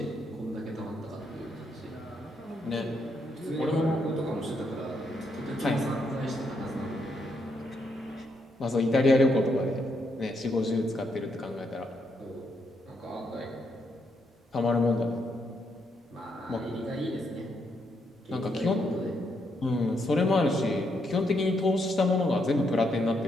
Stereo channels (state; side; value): normal; both; correlation 0.77